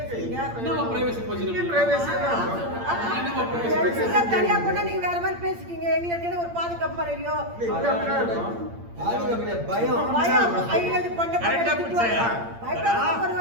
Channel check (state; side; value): late; left; 8.7 ms